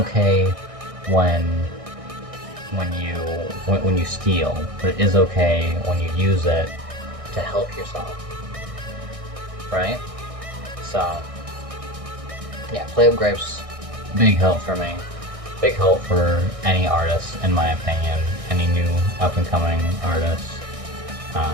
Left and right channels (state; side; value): late; left; 1.6 ms